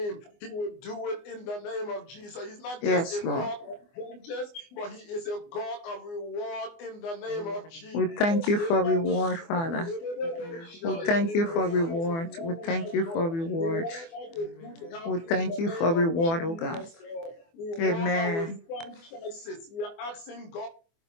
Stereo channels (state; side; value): late; right; 24 ms